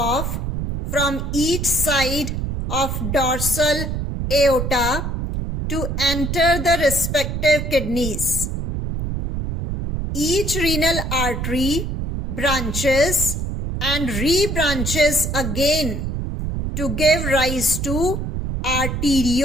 from each side of dorsal aorta to enter the respective kidneys. Each renal artery branches and rebranches again to give rise to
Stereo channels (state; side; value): noise; right; rumble, 3 dB below the sound